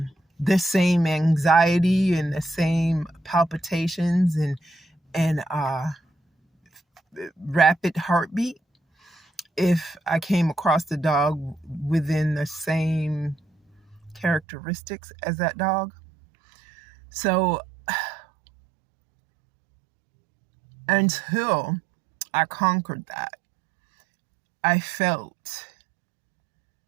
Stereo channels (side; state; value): left; drops out; at 14.4 s